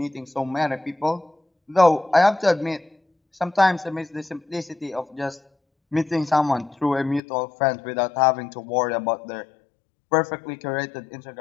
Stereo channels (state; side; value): drops out; right; at 7.2 s